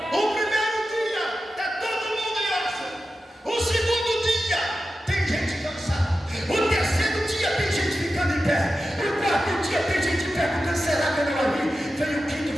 O primeiro dia está todo mundo em oração. O segundo dia tem gente cansada. O terceiro dia tem gente ficando em pé. O quarto dia tem gente perguntando: será que eu não ouvi? Vem o quinto,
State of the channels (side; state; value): both; normal; correlation 0.92